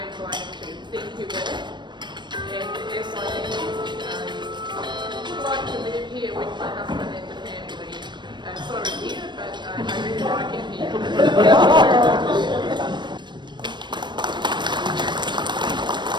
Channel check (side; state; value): left; late; 0.22 ms